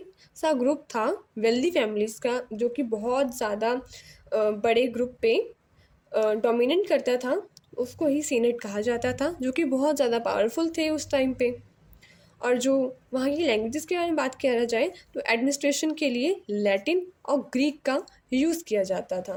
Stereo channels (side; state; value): both; identical; correlation 1.00